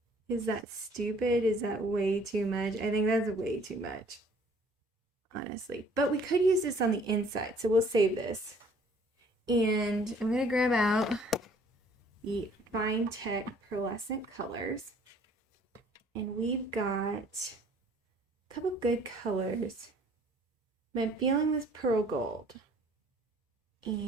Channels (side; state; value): both; normal; correlation 0.57